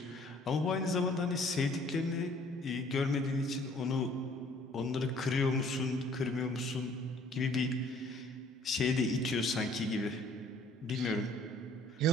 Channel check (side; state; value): both; normal; correlation 0.57